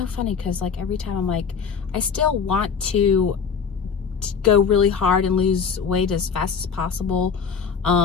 funny because like every time I'm like, I still want to go really hard and lose weight as fast as possible.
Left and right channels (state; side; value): quieter; right; 6.3 dB